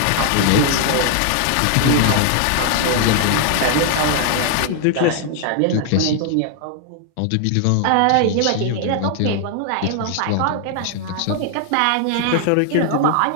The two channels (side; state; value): both; different; correlation 0.00